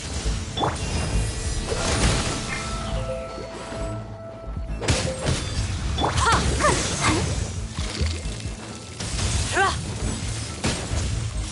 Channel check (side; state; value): both; identical; correlation 1.00